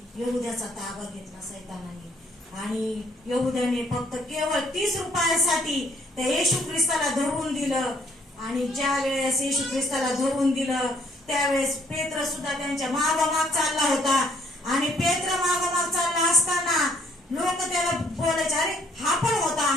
यहुद्याचा ताबा घेतला सैतानाने. आणि यहुद्याने फक्त केवळ 30 रुपयासाठी त्या येशू ख्रिस्ताला धरून दिलं. आणि ज्या वेळेस येशू ख्रिस्ताला धरून दिलं त्यावेळेस पेत्र सुद्धा त्यांच्या मागोमाग चालला होता. आणि पेत्र मागोमाग चालला असताना लोक त्याला बोलायचे, अरे हा पण होता,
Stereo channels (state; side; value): normal; both; correlation 0.65